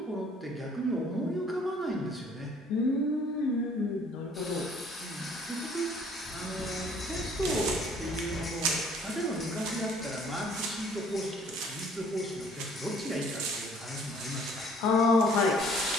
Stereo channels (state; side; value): normal; both; correlation 0.57